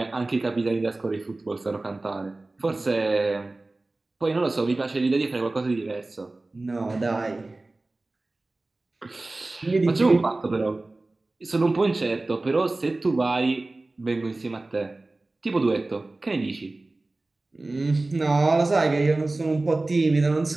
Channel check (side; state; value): left; quieter; 3.0 dB